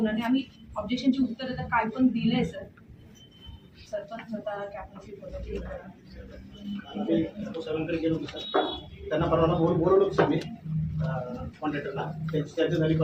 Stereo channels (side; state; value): both; identical; correlation 1.00